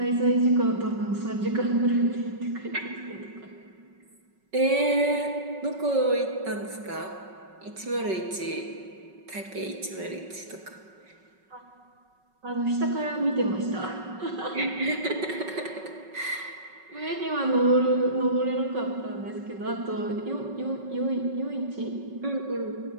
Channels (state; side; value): late; left; 5.3 ms